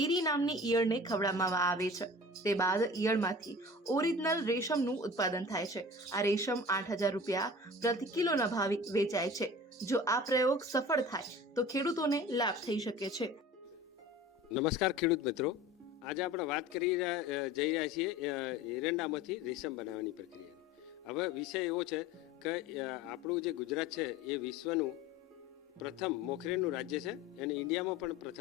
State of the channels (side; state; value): both; normal; correlation 0.39